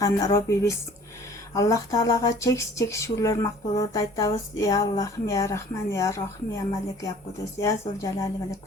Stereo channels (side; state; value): both; normal; correlation 0.51